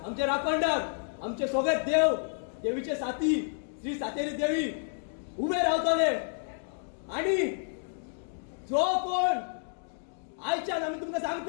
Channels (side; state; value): right; silent; digital silence